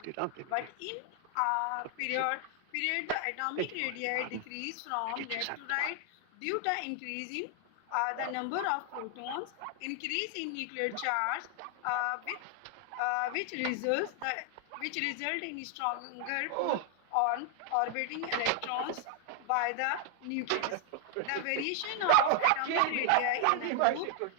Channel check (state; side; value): different; both; correlation 0.00